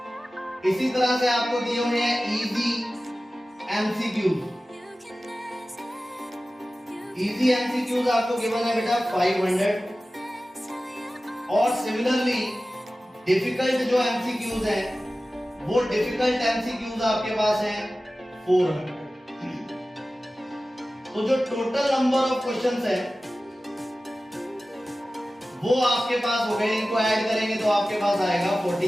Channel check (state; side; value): normal; both; correlation 0.96